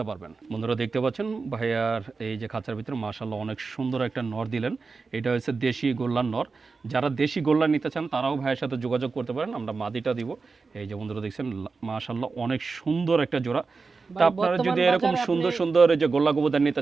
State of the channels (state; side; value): quieter; left; 4.4 dB